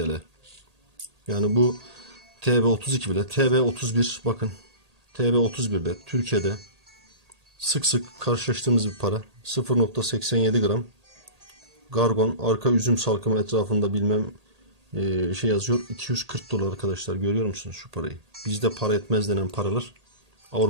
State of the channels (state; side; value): late; left; 1.8 ms